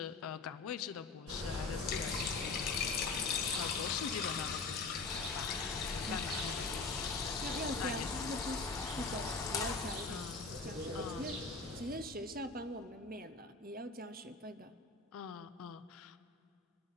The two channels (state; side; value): quieter; right; 4.0 dB